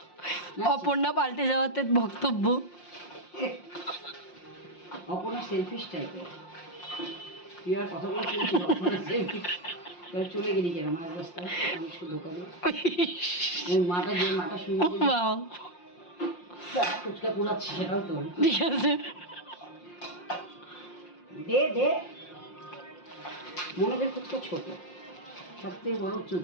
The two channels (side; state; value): right; late; 5.7 ms